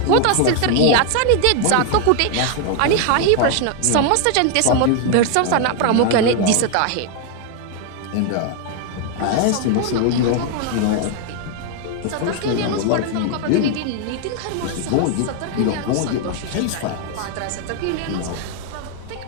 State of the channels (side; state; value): both; different; correlation 0.00